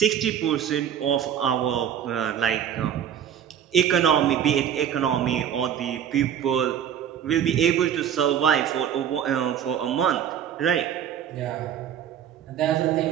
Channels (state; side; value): quieter; left; 9.2 dB